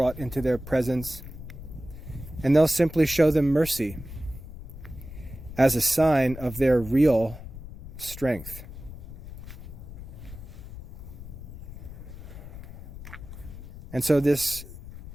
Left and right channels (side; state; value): left; noise; rumble, 13 dB below the sound